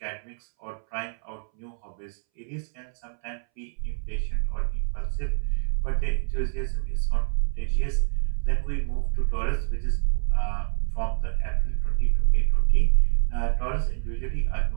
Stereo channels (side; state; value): left; silent; 61 dB below the other